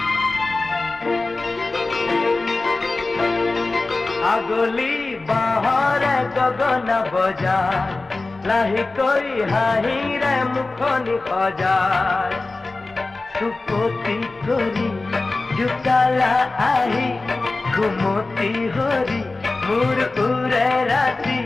আগলি বাহৰে গগন বজায় লাহেকৈ হাঁহিৰে মুখনি সজায় চুপতি কৰি জোকালা আহি ঘুমতি হৰি মোৰ উৰে ৰাতি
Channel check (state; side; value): quieter; right; 3.3 dB